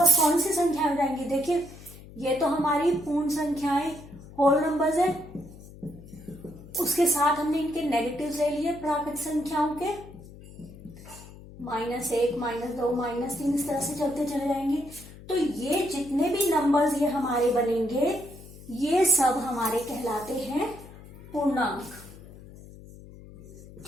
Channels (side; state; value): left; noise; hum, 18 dB below the sound